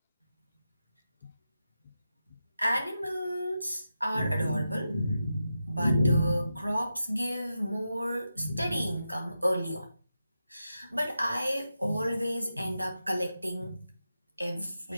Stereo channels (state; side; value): inverted; both; correlation -0.89